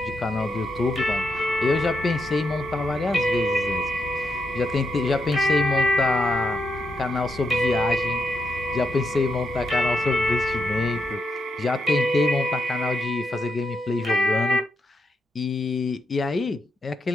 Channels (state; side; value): normal; both; correlation 0.82